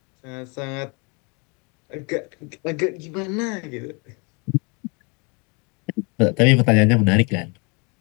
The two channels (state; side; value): quieter; right; 32.4 dB